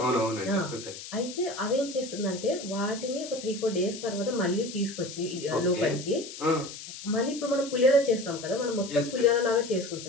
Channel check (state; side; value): noise; left; hiss, 12 dB below the sound